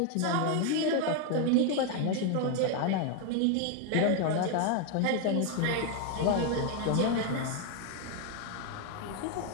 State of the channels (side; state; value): both; different; correlation 0.01